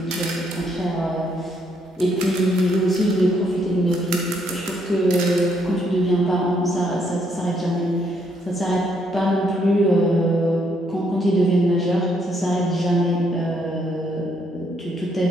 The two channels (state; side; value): normal; both; correlation 0.72